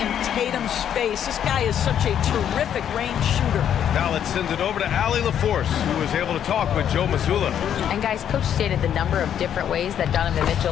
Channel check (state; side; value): quieter; right; 9.5 dB